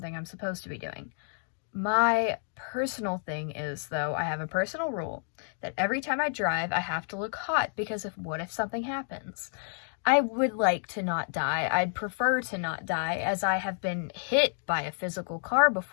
I'm supposed to be doing. My personal thing is, though, I have a personal rule that every time I drive, I have to look hot because what if something happens? I would like to not die. I'd prefer to not die, as I have been hit by a physical car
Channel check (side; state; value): right; silent; digital silence